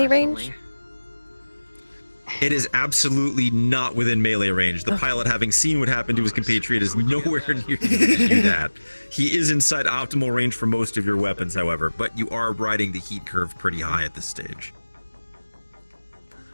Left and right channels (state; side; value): inverted; both; correlation -1.00